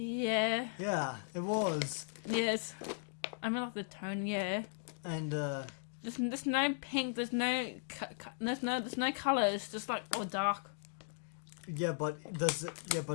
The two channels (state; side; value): silent; right; digital silence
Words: Yeah, it was. Yes. I mean, like the tone. Yeah. And There's no pink. There's no colour. It's just like all dark. but does